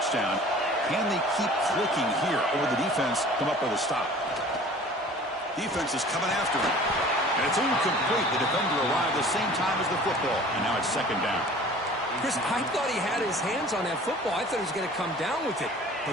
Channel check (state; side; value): normal; both; correlation 0.46